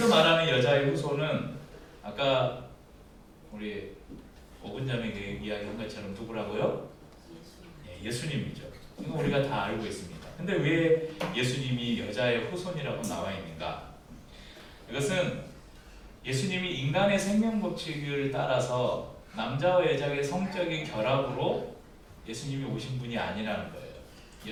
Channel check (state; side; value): identical; both; correlation 1.00